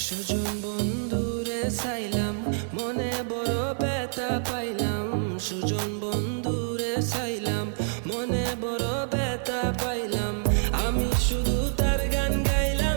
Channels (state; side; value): silent; left; digital silence